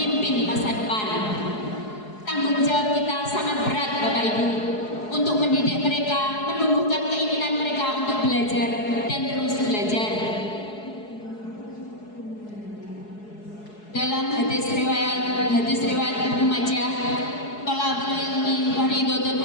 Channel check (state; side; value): late; right; 4.7 ms